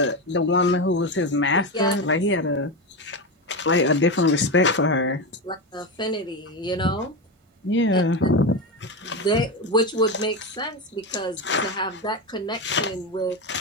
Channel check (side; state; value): both; normal; correlation 0.16